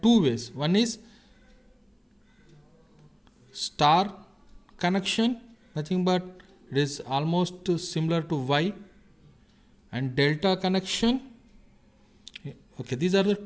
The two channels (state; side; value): identical; both; correlation 1.00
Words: two ways. One is star connection, nothing but it is almost similar to Y, and delta connection. Okay, these are the